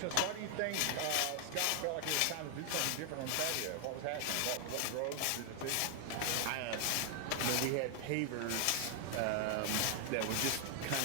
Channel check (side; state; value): both; different; correlation 0.00